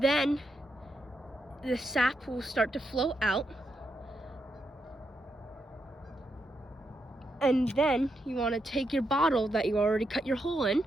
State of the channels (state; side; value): normal; both; correlation 0.82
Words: then the sap will start to flow out. And then you want to take your bottle that you already cut your hole in